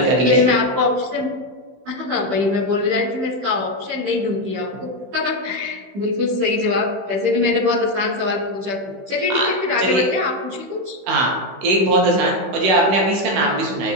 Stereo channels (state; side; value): late; left; 15 ms